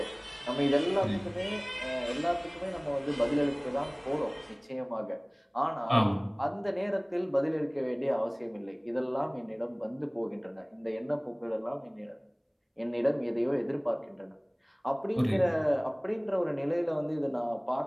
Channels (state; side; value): identical; both; correlation 1.00